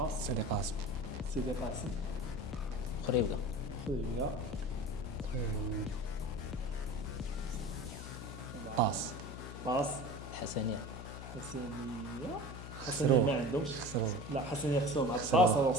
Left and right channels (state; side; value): noise; left; hum, 10 dB below the sound